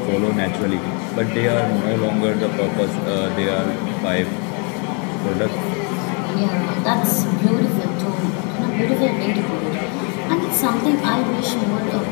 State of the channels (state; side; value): quieter; right; 36.3 dB